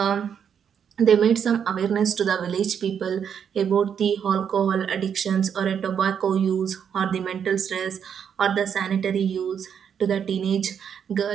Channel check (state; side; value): quieter; left; 7.8 dB